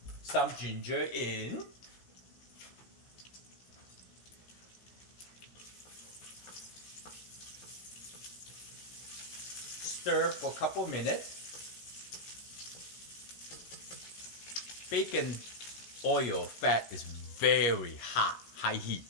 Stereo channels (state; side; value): late; right; 17 ms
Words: Some ginger in. Stir for a couple minutes. Bacon oil fat is very hot, high heat.